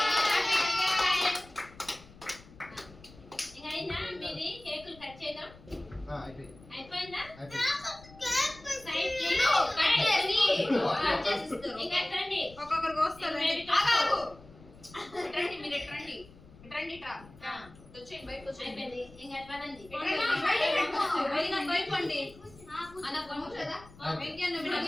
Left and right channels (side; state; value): left; noise; rumble, 22 dB below the sound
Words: ఇంకా అయినా మీది కేకులు కట్ చేయడం అయిపోయిందా సైడ్ ఇంకా రండి ఒక్కొక్కరికి వస్తారు రండి మీరు రండి రండి వచ్చేయండి బయటకు వచ్చేయండి అయిపోయింది ఇంకా పనండి భయపండి అన్న కొంచెదా వెంకయ్య